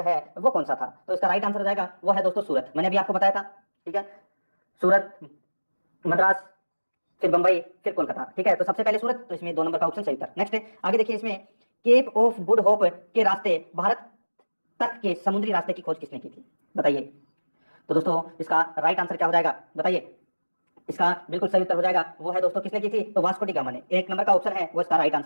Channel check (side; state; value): both; inverted; correlation -1.00